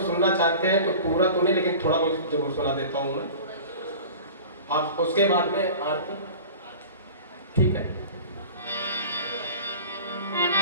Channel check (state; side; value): inverted; both; correlation -0.39